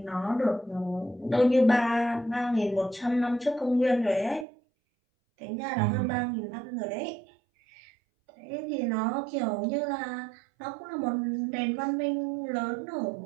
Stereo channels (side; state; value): left; drops out; at 4.5 s